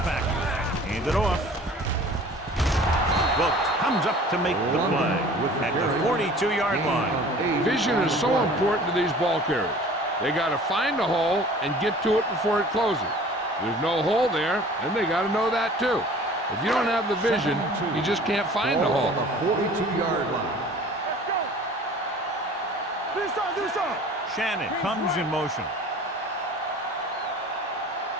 package. Hand it off. Wilkes comes up to make the play at the 42-yard line. Vision is so important to these ball carriers. They got to find a hole and get to it before it closes. There's no hole there, and they got to know that too. If you don't have the vision, you just can't find the hole. On the 42-yard line. Let's go. Do something. Shannon comes in motion.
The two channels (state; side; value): normal; both; correlation 0.46